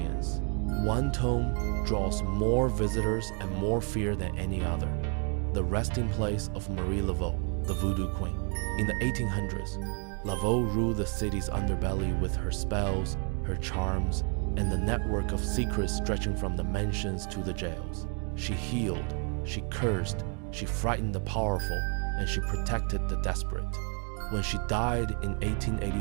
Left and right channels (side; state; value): left; quieter; 37.3 dB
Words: one tomb draws more visitors and more fear than any other. The resting place of Marie Laveau, the Voodoo Queen. In the 1800s, Laveau ruled the city's underbelly with her spells, her charms, and the network of secrets stretching from the mansions to the jails. She healed, she cursed, she frightened the powerful, and she protected the desperate. When she died in